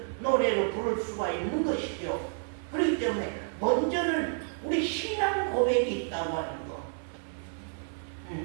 노래로 부를 수가 있는 것이죠. 그렇기 때문에 먼저는 우리 신앙 고백이 있다고 하는 거,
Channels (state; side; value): silent; left; 58 dB below the other